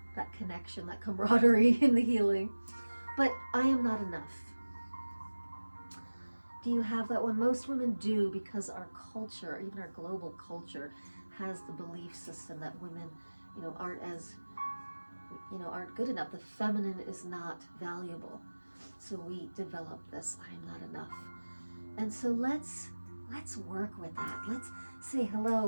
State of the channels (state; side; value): inverted; both; correlation -1.00